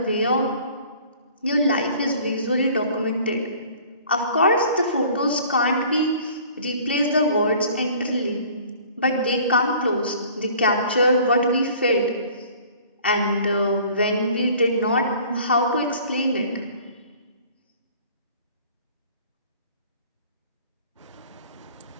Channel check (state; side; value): inverted; both; correlation -0.51